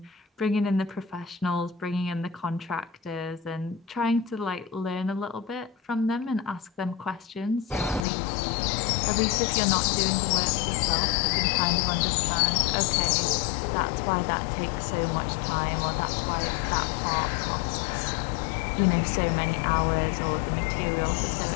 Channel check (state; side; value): drops out; right; at 8.0 s